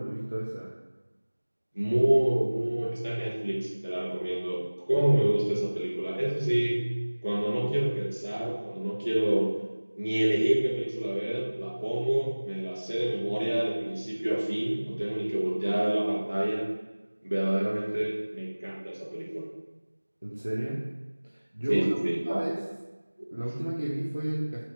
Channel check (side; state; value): both; inverted; correlation -1.00